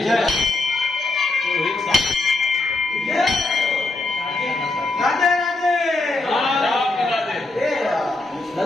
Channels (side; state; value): right; quieter; 3.1 dB